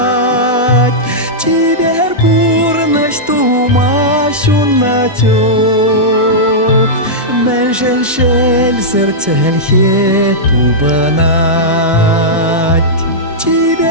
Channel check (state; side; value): normal; both; correlation -0.10